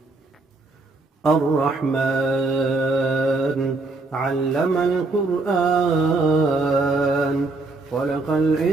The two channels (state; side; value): quieter; left; 3.4 dB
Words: الرحمن علم القرآن، خلق